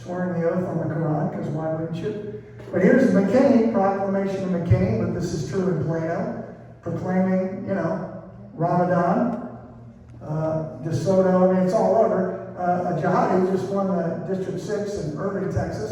the oath on the Quran, because why wouldn't you? But here's McKinney, proclamation of McKinney, but this is true in Plano, proclaiming, Ramadan, DeSoto, I mean, it's all over. A jihadi just won the District 6 in Irving,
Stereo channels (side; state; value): both; identical; correlation 1.00